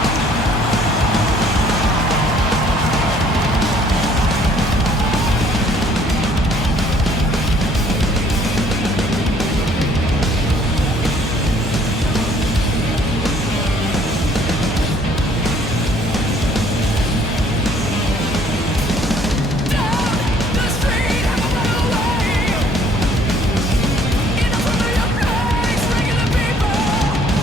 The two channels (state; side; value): normal; both; correlation 0.60